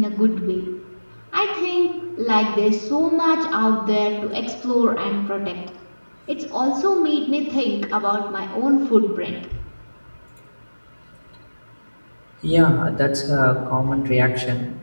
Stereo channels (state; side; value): inverted; both; correlation -1.00